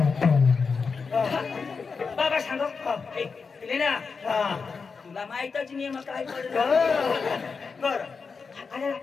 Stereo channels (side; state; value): right; quieter; 5.1 dB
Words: बाबा सांगा पिले ना तुला माहितच नाही मग काय पडलं बर